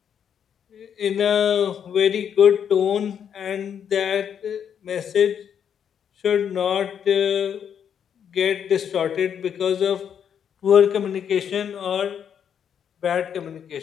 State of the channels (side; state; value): right; quieter; 8.3 dB